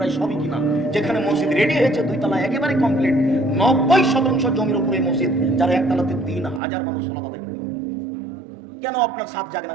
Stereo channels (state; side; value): drops out; left; at 6.6 s